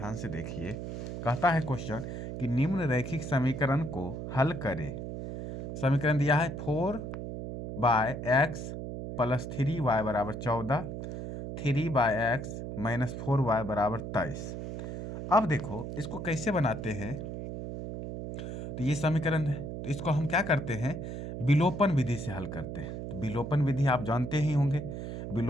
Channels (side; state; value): right; noise; hum, 6 dB below the sound